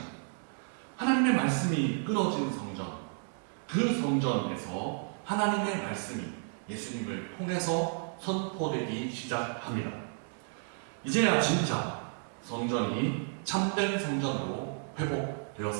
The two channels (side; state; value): left; silent; 56 dB below the other